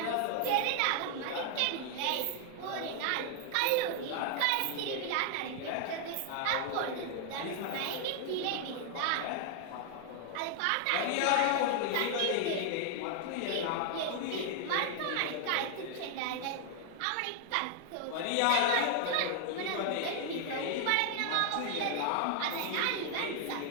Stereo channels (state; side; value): different; both; correlation 0.00